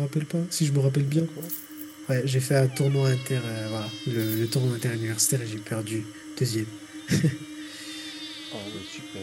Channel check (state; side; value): identical; both; correlation 1.00